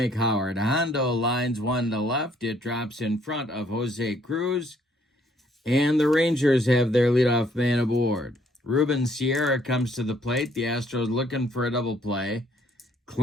Howard. Hondo lines one to left. It drops in front of Jose Cruz. And the Rangers have their leadoff man aboard. Ruben Sierra comes to the plate. The Astros looking for a double play.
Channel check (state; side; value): normal; both; correlation 0.65